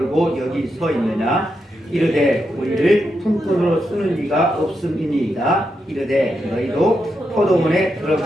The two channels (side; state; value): both; normal; correlation 0.84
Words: 여기 서 있느냐 이르되 우리를 품꾼으로 쓰는 이가 없음이니이다. 이르되 너희도 포도원에